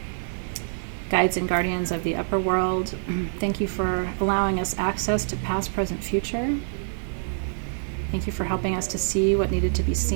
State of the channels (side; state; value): left; silent; 61 dB below the other